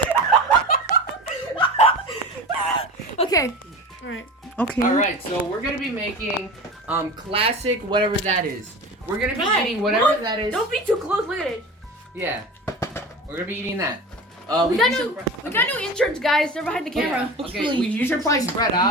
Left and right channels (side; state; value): both; normal; correlation 0.32